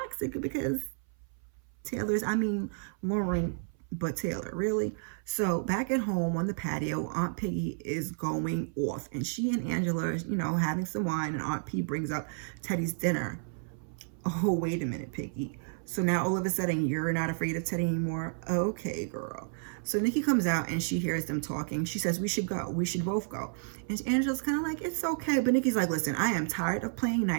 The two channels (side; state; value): left; silent; 57 dB below the other